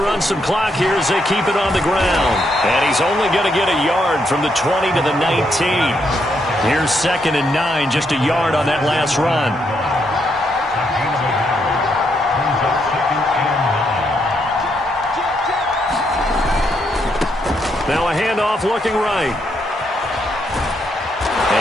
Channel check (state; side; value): normal; both; correlation 0.77